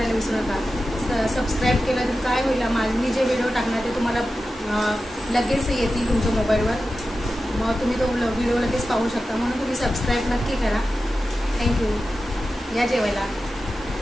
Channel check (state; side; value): normal; both; correlation 0.93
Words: विसरू नका. सबस्क्राईब केलं तर काय होईल, मी जे व्हिडिओ टाकणार ते तुम्हाला लगेच येतील तुमच्या मोबाईलवर. मग तुम्ही तो व्हिडिओ लगेच पाहू शकता. म्हणून तुम्ही सबस्क्राईब नक्की करा. थँक्यू. या जेवायला.